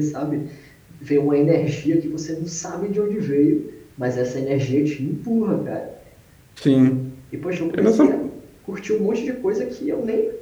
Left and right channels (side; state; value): both; identical; correlation 1.00